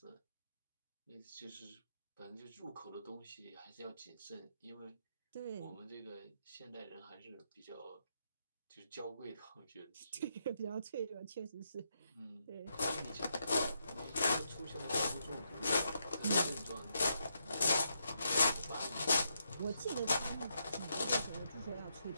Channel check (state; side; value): inverted; both; correlation -0.80